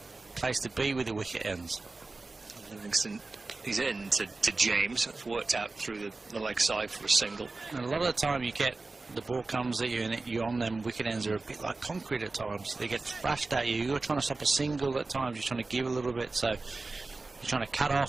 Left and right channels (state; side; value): quieter; left; 3.5 dB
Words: place to be with the wicket ends. And Livingston is in to James. That's worked out through the leg side for a single. And a lot of the time you get the ball comes at you and you're on them. Wicket ends are a bit like concrete at times. They get thrashed at you. You're trying to stop a single at times. You're trying to give a little bit. So you're trying to cut